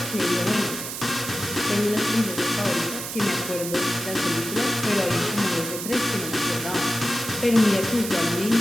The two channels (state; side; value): noise; right; hiss, 7 dB below the sound